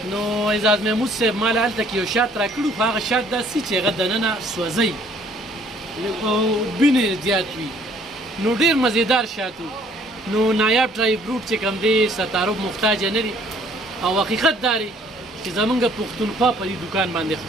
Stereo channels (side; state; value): both; normal; correlation 0.60